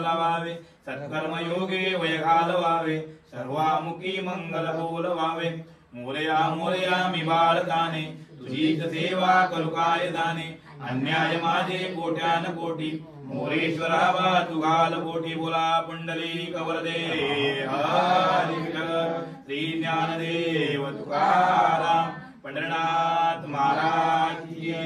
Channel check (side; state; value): both; identical; correlation 1.00